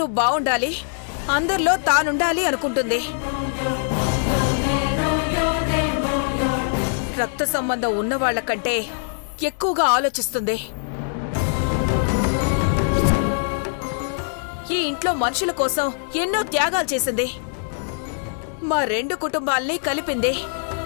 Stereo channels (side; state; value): right; silent; 59 dB below the other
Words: బావుండాలి, అందరిలో తానుండాలి అనుకుంటుంది. రక్త సంబంధం ఉన్నవాళ్ల కంటే ఎక్కువగా ఆలోచిస్తుంది. ఈ ఇంట్లో మనుషుల కోసం ఎన్నో త్యాగాలు చేసింది. మా 2 కుటుంబాల్ని కలిపింది.